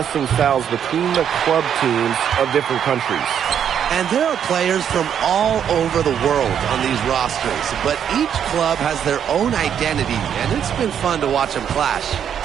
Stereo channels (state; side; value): quieter; left; 8.7 dB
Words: styles between the club teams of different countries. And there are players from all over the world on these rosters, but each club has their own identity, and it's been fun to watch them clash.